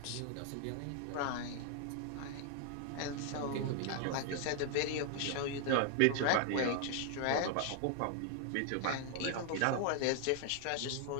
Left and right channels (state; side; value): different; both; correlation 0.00